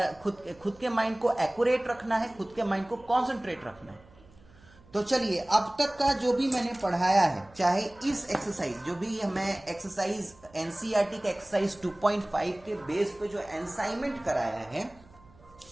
खुद के माइंड को एक्यूरेट रखना है, खुद के माइंड को कॉन्सेंट्रेट रखना है। तो चलिए, अब तक का जो भी मैंने पढ़ाया है, चाहे इस एक्सरसाइज जो भी मैं एक्सरसाइज एनसीईआरटी का एक्सरसाइज 2.5 के बेस पे जो असाइनमेंट कराया है,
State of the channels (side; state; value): right; noise; hum, 26 dB below the sound